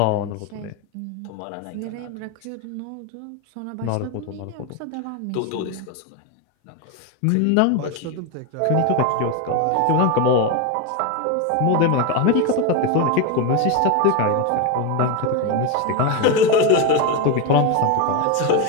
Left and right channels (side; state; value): both; different; correlation 0.03